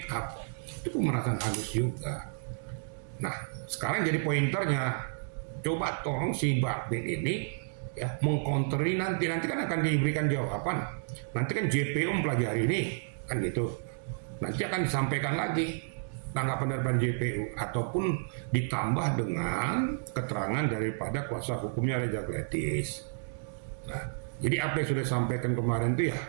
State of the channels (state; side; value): silent; left; digital silence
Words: up. Itu pemerasan halus juga. Nah, sekarang jadi pointernya, coba tolong si Bakmin ini ya mengkonteri nanti kan akan diberikan jawaban. Nanti kan JPU mempelajari ini kan gitu. Nanti akan disampaikan lagi tanggapan dari JPU ataupun ditambah dengan keterangan daripada kuasa hukumnya Reza Gledis. Nah, jadi apa yang sudah disampaikan kemarin itu ya